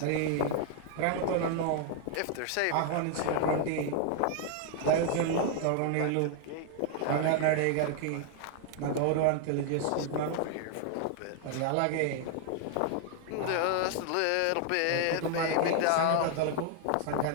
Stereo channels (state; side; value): different; both; correlation 0.00